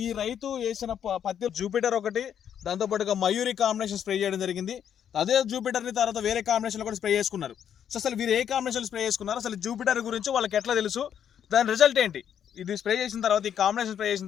ఈ రైతు వేసిన పత్తి జూపిటర్ ఒకటి, దాంతోపాటుగా మయూరి కాంబినేషన్ స్ప్రే చేయడం జరిగింది. అదే జూపిటర్ని తర్వాత వేరే కాంబినేషన్లో కూడా స్ప్రే చేసుకున్నారు. సో అసలు వీరు ఏ కాంబినేషన్ స్ప్రే చేసుకున్నారు, అసలు జూపిటర్ గురించి వాళ్ళకి ఎట్లా తెలుసు, దాని రిజల్ట్ ఏంటి, ఇది స్ప్రే చేసిన తర్వాత ఈ కాంబినేషన్ స్ప్రే చేసిన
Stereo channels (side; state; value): right; quieter; 9.0 dB